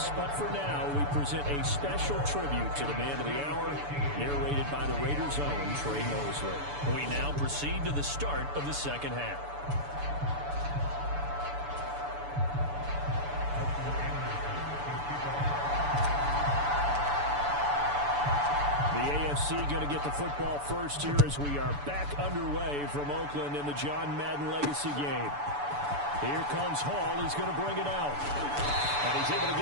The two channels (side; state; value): left; late; 6.9 ms